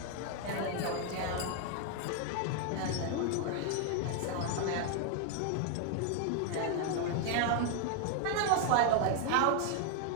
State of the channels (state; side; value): different; both; correlation 0.00